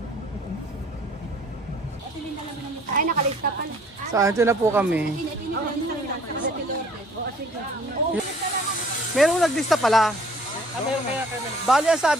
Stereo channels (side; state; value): both; normal; correlation 0.56